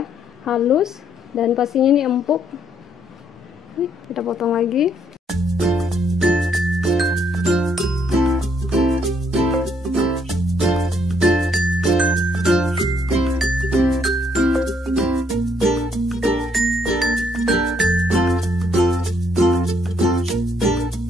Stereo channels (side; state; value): both; normal; correlation 0.71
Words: halus, dan pastinya ini empuk. Kita potong lagi.